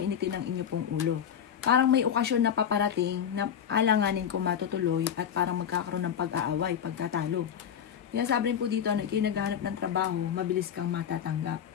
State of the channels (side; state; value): right; quieter; 8.6 dB